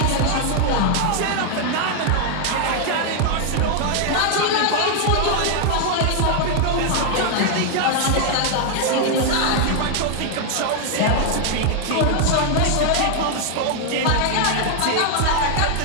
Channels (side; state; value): both; different; correlation 0.00